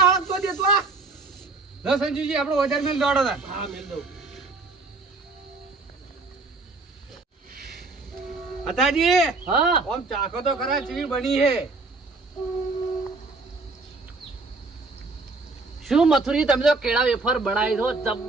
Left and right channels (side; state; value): left; quieter; 3.7 dB